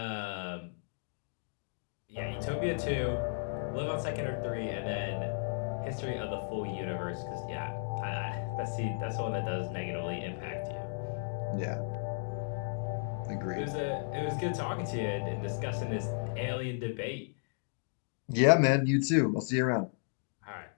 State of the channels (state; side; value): silent; right; digital silence